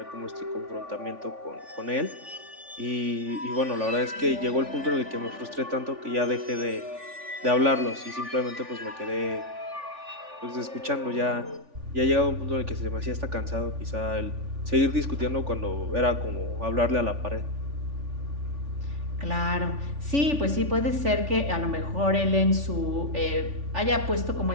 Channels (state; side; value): late; left; 3.5 ms